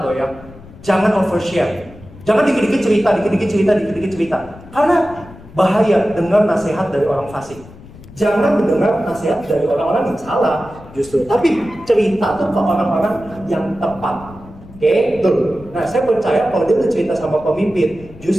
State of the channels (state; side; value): noise; left; rumble, 19 dB below the sound